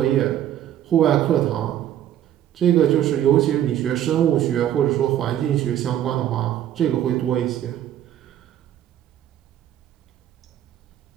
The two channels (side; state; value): left; quieter; 11.4 dB